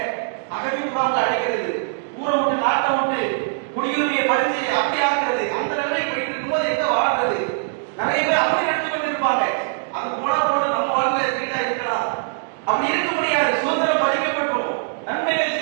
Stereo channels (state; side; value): silent; left; digital silence